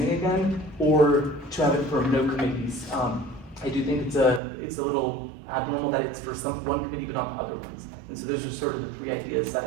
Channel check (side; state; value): left; drops out; at 4.4 s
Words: again, or to have it for no committees. I do think it's a little abnormal that it's for one committee but not the other ones. And so those are sort of the three ideas that